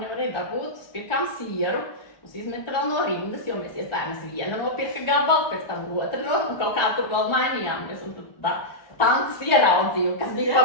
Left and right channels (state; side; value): late; right; 1.2 ms